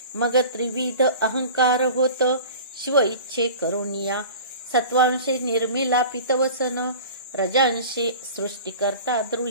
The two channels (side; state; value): both; inverted; correlation -0.39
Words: मग त्रिविध अहंकार होत, शिव इच्छे करुनिया. सत्वांशे निर्मिला पितवसन, रजांशे सृष्टिकर्ता